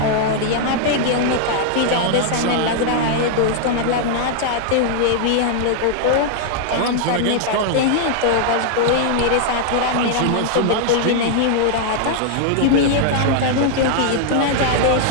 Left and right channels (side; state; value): both; different; correlation 0.00